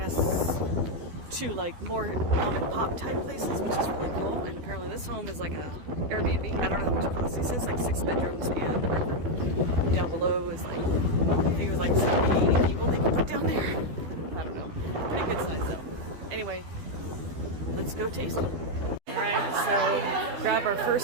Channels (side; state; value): left; late; 12 ms